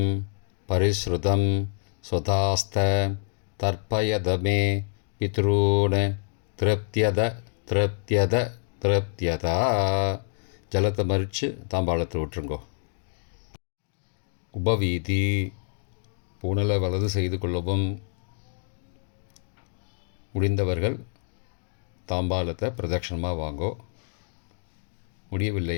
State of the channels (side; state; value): right; silent; digital silence